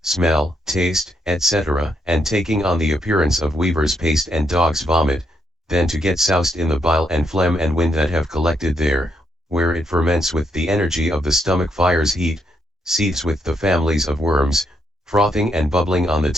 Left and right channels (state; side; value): normal; both; correlation 0.77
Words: smell, taste, etc., and taking on the appearance of weaver's paste and dog's vomit, then to get soused in the bile and phlegm and wind that have collected there, where it ferments with the energy of the stomach fire's heat, seethes with the families of worms, frothing and bubbling on the